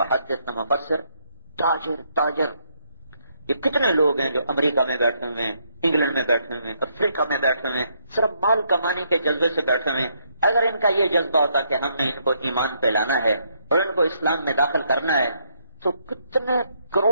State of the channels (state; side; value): inverted; both; correlation -0.74